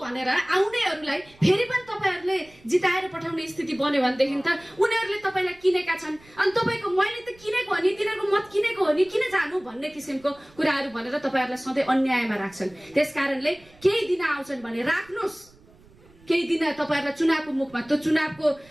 भनेर आउनेहरूलाई फेरि पनि तपाईँहरूले जिताएर पठाउने स्थिति बन्यो भनेदेखि त उनीहरूले तपाईँलाई किनेका छन्, अनि तपाईँको मैले त किनेको हो नि, तिनीहरूको मत किनेको हो नि, किन जानु भन्ने किसिमको कुराहरू भनेर तपाईँहरूलाई सधैँ अन्यायमा राख्छन्। त्यसकारणले केही दिन आउँछन् भने राख्नुहोस्, केही दिन तपाईँहरूलाई चुनावको मुखमा, त्यो चुनावको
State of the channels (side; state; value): right; noise; rumble, 27 dB below the sound